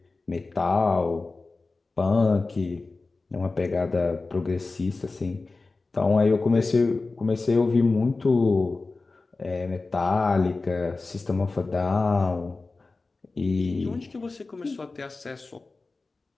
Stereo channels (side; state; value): right; quieter; 3.6 dB